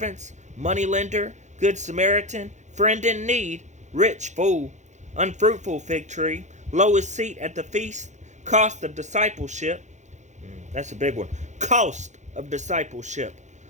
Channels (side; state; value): left; late; 0.34 ms